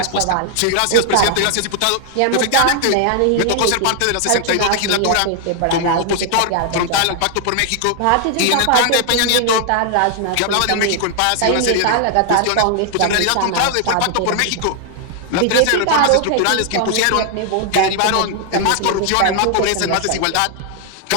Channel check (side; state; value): both; different; correlation 0.00